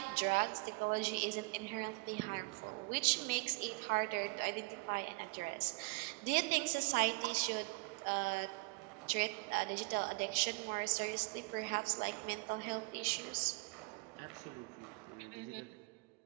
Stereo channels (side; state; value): left; quieter; 28.2 dB